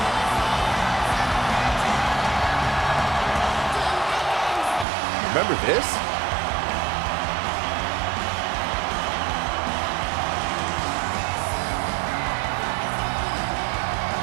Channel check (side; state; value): left; drops out; at 4.9 s